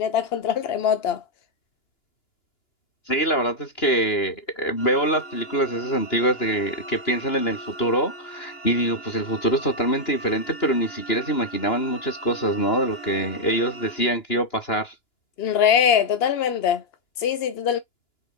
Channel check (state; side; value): late; right; 2.9 ms